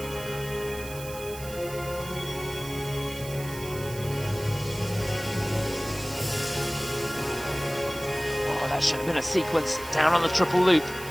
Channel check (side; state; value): right; noise; hiss, 14 dB below the sound